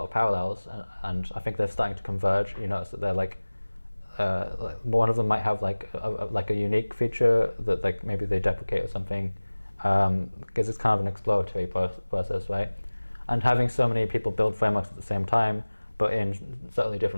of parallels, and I think they're starting to converge. You notice that they're like one of them might have like a unique feature that like maybe they deprecate or something, because it's kind of an exploratory process, right? And having so many people build frameworks at the same time, but in certainly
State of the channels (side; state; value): both; inverted; correlation -1.00